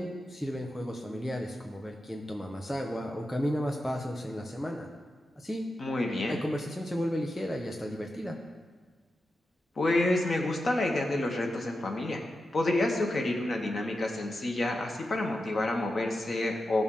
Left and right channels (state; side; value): normal; both; correlation 0.90